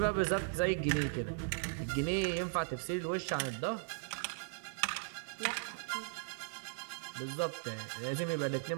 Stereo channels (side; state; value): left; silent; digital silence